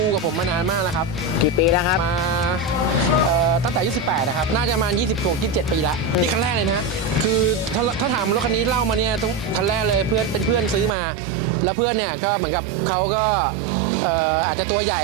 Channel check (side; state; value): left; drops out; at 11.0 s